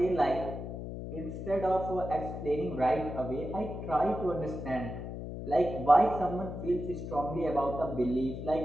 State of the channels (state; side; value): noise; left; hum, 7 dB below the sound